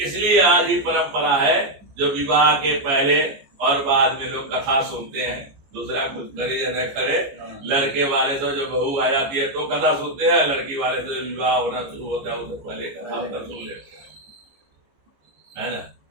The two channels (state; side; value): late; left; 14 ms